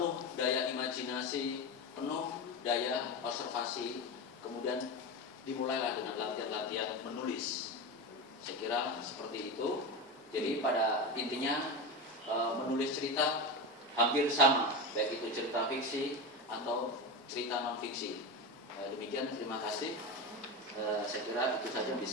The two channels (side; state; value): both; normal; correlation 0.20